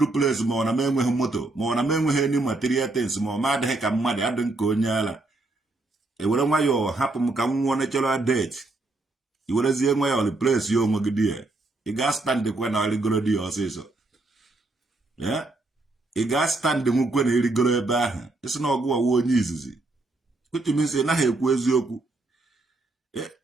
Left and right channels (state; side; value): quieter; left; 3.0 dB